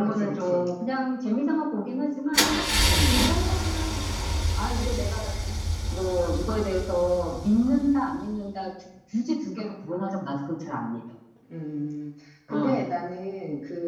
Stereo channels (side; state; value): both; identical; correlation 1.00